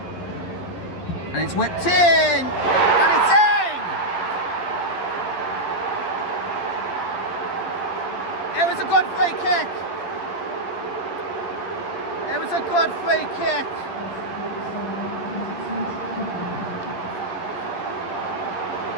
And it's whipped in! And it's in! It was a good free kick. It was a good free kick.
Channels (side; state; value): right; late; 11 ms